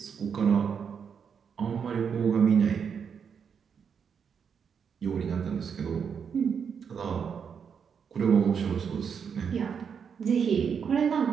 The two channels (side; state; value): left; quieter; 6.9 dB